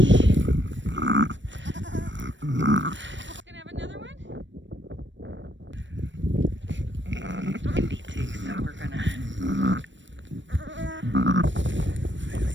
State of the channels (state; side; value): late; left; 0.54 ms